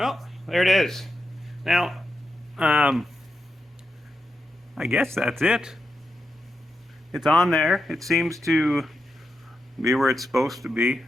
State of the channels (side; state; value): both; normal; correlation 0.87